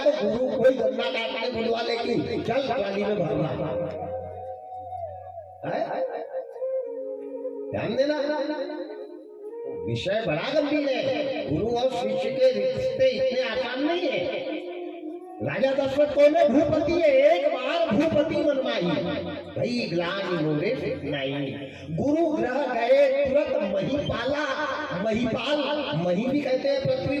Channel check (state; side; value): identical; both; correlation 1.00